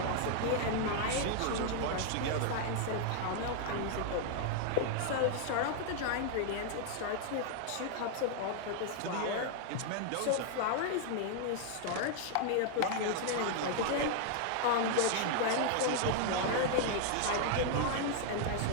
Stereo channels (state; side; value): different; both; correlation 0.00